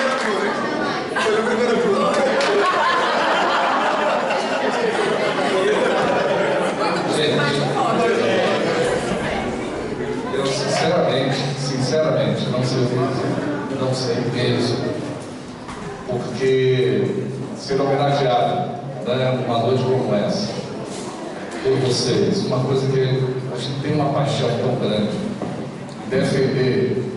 Eu sinceramente, não sei mesmo, porque ser homenageado, né, numa noite como essa, por vocês, uma coisa que a gente tem uma paixão tão grande, defender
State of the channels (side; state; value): both; identical; correlation 1.00